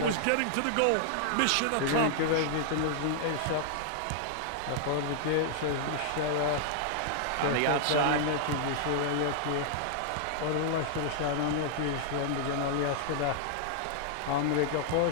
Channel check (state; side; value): different; both; correlation -0.01